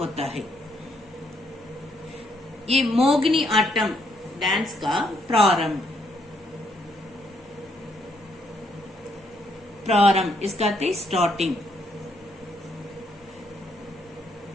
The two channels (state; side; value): normal; both; correlation 0.73